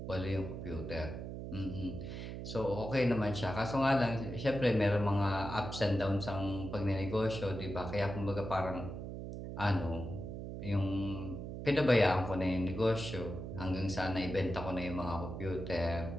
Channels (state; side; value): noise; right; hum, 7 dB below the sound